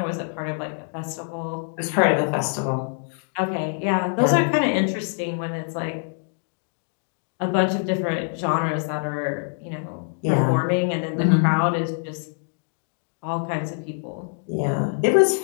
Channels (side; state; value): right; silent; 62 dB below the other